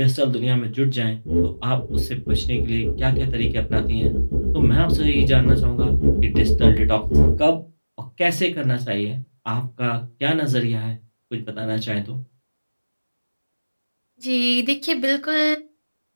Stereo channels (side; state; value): both; inverted; correlation -1.00